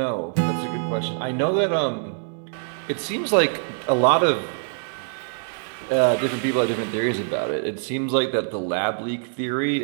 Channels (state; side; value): silent; left; digital silence